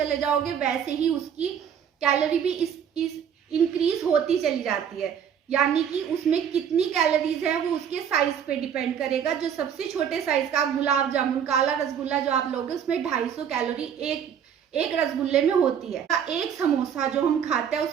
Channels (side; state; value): left; quieter; 8.3 dB